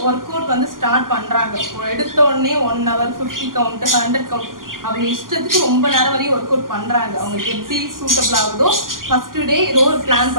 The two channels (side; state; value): left; late; 0.91 ms